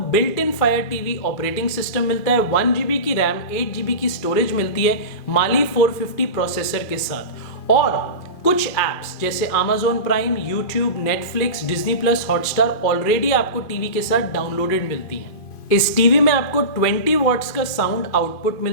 built in fire TV operating system मिलता है, 1 GB की रैम, 8 GB की स्टोरेज मिलती है माली 450 प्रोसेसर के साथ। और कुछ एप्स जैसे Amazon prime, YouTube, Netflix, Disney plus, Hotstar already आपको टीवी के साथ डाउनलोडेड मिलती हैं। इस टीवी में आपको 20 वॉट्स का साउंड आउटपुट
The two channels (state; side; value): late; right; 2.5 ms